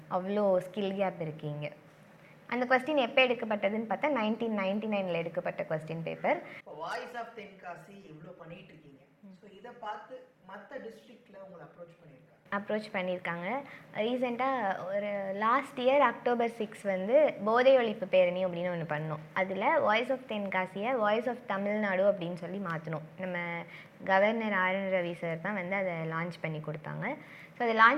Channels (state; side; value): identical; both; correlation 1.00